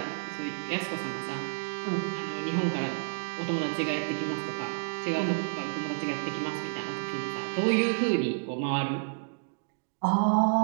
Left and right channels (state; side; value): silent; left; digital silence